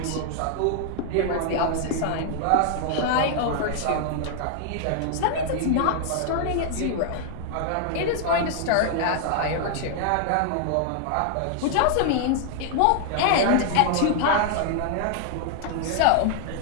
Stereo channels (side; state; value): both; different; correlation 0.00